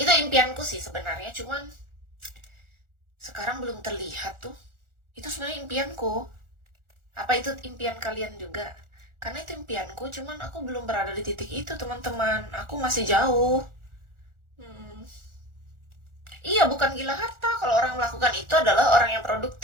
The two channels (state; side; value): late; left; 1.4 ms